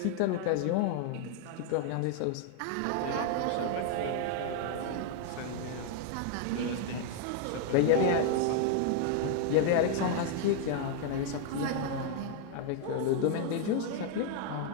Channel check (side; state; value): both; different; correlation 0.00